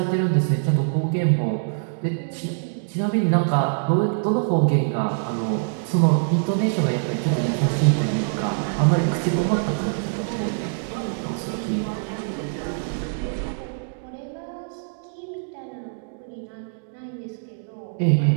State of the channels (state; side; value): silent; left; digital silence